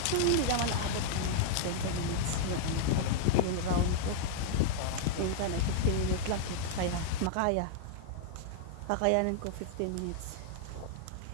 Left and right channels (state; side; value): different; both; correlation -0.01